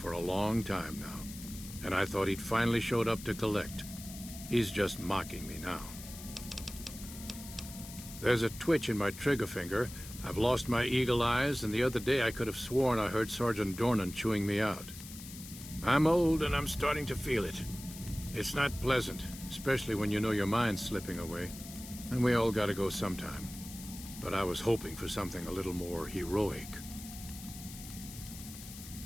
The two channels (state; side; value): noise; left; hiss, 13 dB below the sound